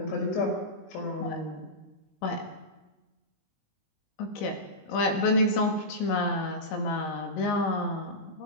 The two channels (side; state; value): right; late; 19 ms